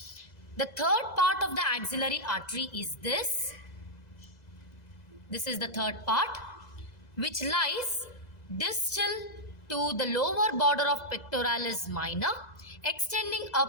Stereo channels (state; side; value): late; right; 2.0 ms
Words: The third part of the axillary artery is this. This is the third part, which lies distal to the lower border of pectoralis minor, extending